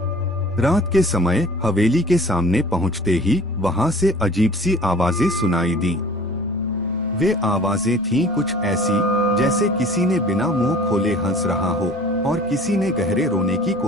रात के समय हवेली के सामने पहुंचते ही वहां से अजीब सी आवाजें सुनाई दी। वे आवाजें थीं कुछ ऐसी जैसे किसी ने बिना मुंह खोले हंस रहा हो और किसी ने गहरे रोने की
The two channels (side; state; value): both; normal; correlation 0.47